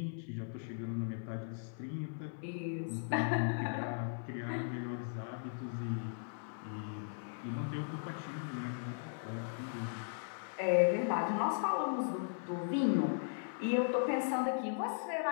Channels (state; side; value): silent; right; 53 dB below the other